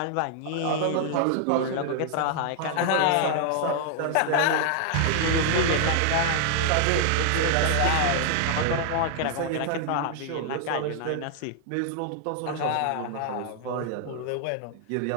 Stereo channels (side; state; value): both; different; correlation 0.00